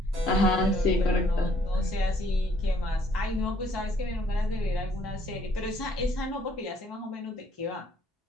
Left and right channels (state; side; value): normal; both; correlation 0.64